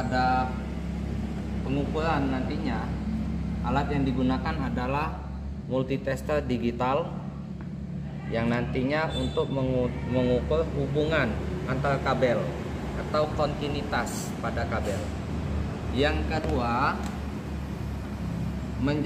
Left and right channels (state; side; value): identical; both; correlation 1.00